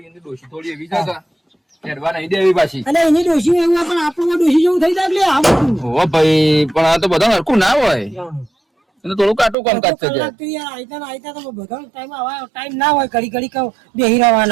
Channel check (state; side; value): drops out; left; at 9.6 s